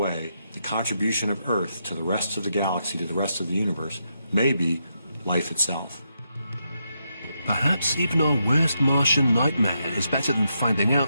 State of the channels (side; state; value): both; inverted; correlation -0.82